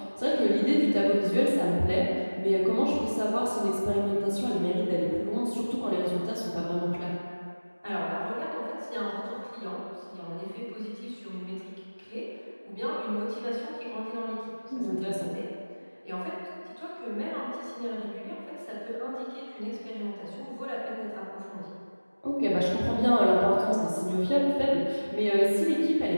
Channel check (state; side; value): inverted; both; correlation -1.00